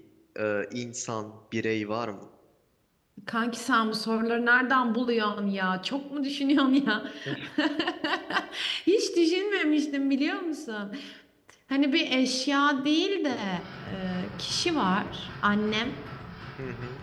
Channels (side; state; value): both; identical; correlation 1.00